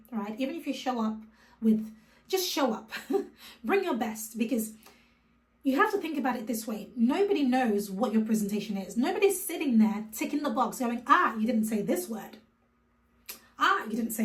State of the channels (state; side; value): identical; both; correlation 1.00